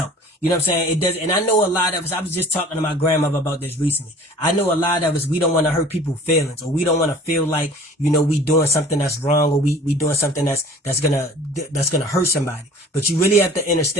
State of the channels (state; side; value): normal; both; correlation 0.47